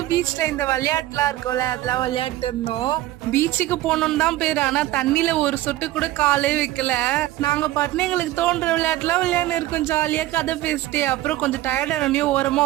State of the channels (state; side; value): quieter; left; 15.8 dB